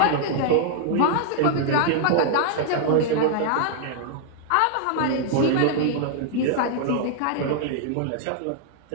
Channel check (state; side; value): different; both; correlation 0.00